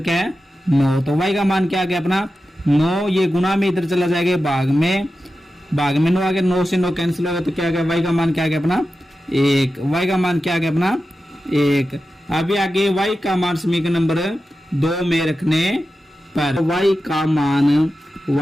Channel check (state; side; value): normal; both; correlation 0.92